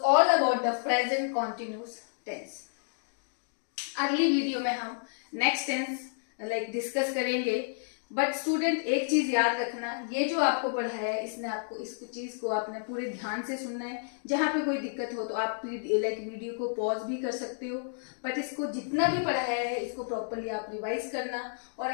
about the present continuous tense. अगली वीडियो में हम नेक्स्ट टेंस लाइक डिस्कस करेंगे, but student एक चीज याद रखना, ये जो आपको पढ़ाया है इसने आपको इस चीज को आपने पूरे ध्यान से सुनना है। जहां पे कोई दिक्कत हो तो आप लाइक वीडियो को पॉज भी कर सकते हो, बट इसको जितना भी पढ़ाया है इसको प्रॉपरली आप रिवाइज करना। और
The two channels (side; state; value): right; silent; digital silence